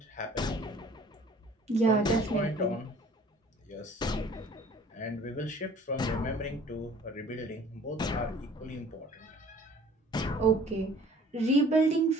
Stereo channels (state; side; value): normal; both; correlation 0.52